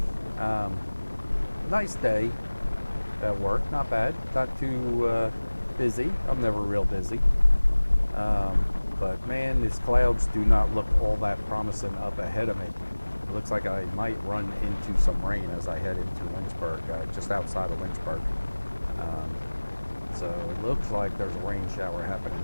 Um, Nice day at work, not bad. Not too busy. I'm never real busy. Um, but man, these clouds do not look all that promising up ahead of me. It looks like I might run into some rain as I head into Lynchburg, just outside of Lynchburg. Um, so it looks like there's a rain shower happening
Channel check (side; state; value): both; inverted; correlation -1.00